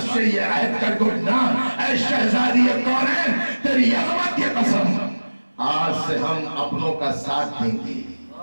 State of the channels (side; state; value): both; inverted; correlation -1.00